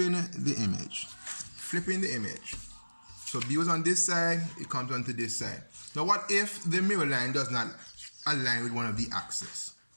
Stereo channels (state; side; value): inverted; both; correlation -1.00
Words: the image. Flipping the image. So B was on this side, it comes onto this side. Now what if the mirror line does not align with one of the axes?